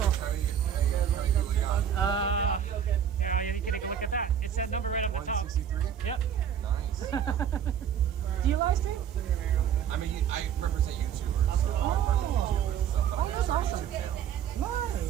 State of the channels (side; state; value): left; quieter; 8.8 dB